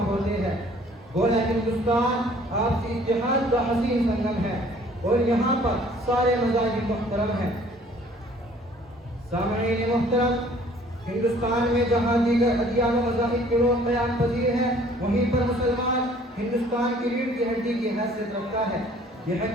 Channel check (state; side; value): normal; both; correlation 0.55